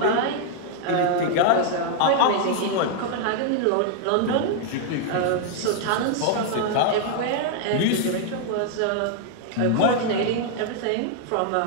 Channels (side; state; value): both; different; correlation 0.00